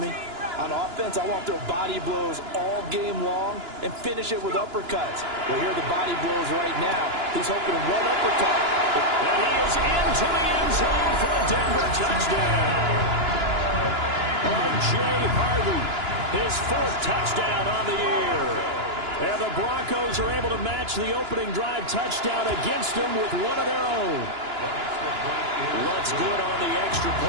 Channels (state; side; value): late; left; 2.9 ms